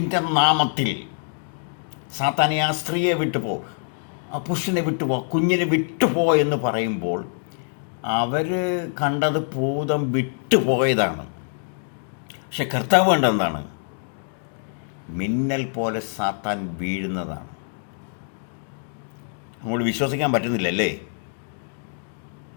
നാമത്തിൽ സാത്താനെ ആ സ്ത്രീയെ വിട്ടുപോ, ആ പുരുഷനെ വിട്ടുപോ, കുഞ്ഞിനെ വിട്ടുപോ എന്ന് പറയുമ്പോൾ അവർ കണ്ടത് ഭൂതം വിട്ടുപോയതാണ്. പക്ഷെ കർത്താവ് കണ്ടെന്താണ്? മിന്നൽ പോലെ സാത്താൻ വീഴുന്നതാണ്. നമ്മൾ വിശ്വസിക്കാൻ പറ്റുന്നില്ലല്ലേ?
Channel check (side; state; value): right; silent; 62 dB below the other